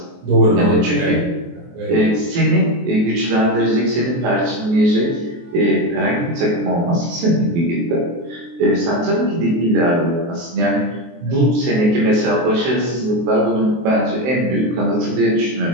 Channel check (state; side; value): late; left; 23 ms